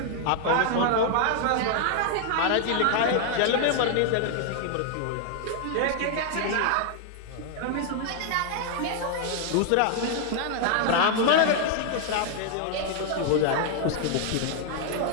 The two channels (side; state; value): both; different; correlation 0.00